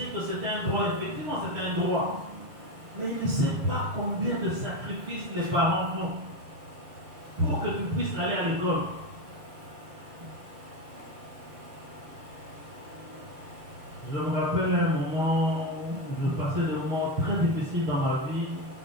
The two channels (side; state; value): left; late; 7.0 ms